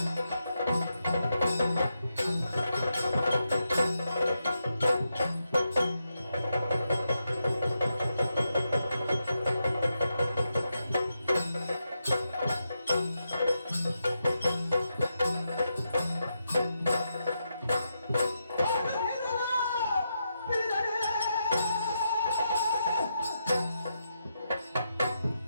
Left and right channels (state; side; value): inverted; both; correlation -0.85